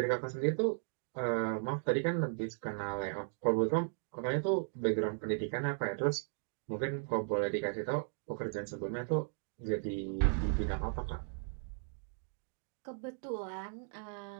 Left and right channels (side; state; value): left; silent; digital silence